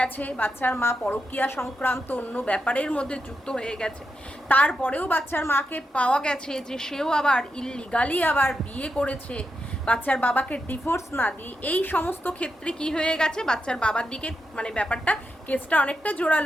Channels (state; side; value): normal; both; correlation 0.85